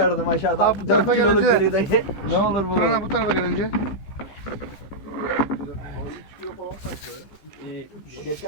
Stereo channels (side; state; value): right; late; 15 ms